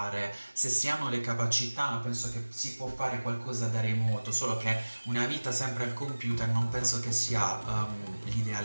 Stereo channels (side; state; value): both; inverted; correlation -1.00